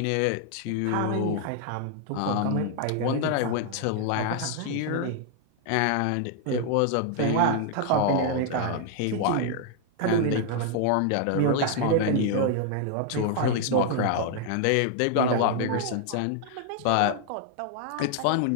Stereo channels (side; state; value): both; different; correlation 0.00